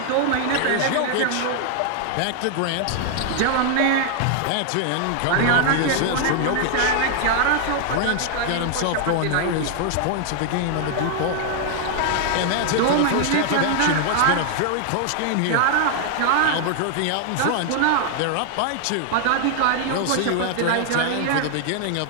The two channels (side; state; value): both; different; correlation 0.00